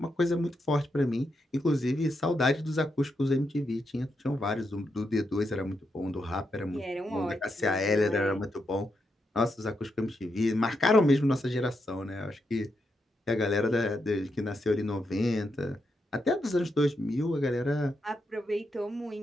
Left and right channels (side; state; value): both; normal; correlation 0.83